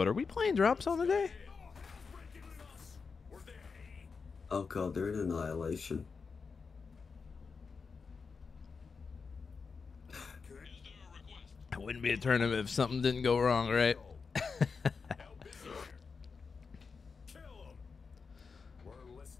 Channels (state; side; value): quieter; right; 5.1 dB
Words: are we playing drop zone today? Oh god, they're in Annihilation. It wouldn't be a tournament if something didn't go wrong, right? Kill 'em. We're